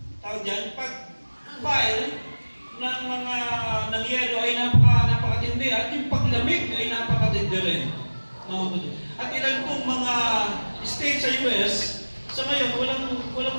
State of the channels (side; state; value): both; inverted; correlation -1.00